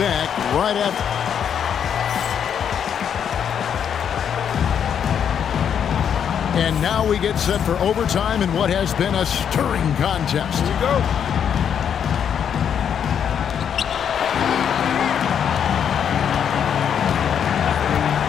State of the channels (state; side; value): quieter; right; 8.3 dB